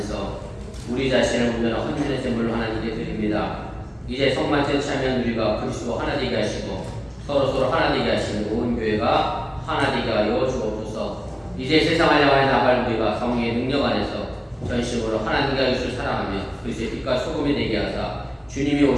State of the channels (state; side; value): identical; both; correlation 1.00